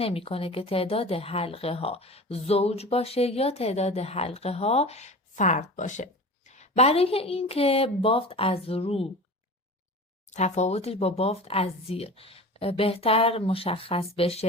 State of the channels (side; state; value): both; normal; correlation 0.35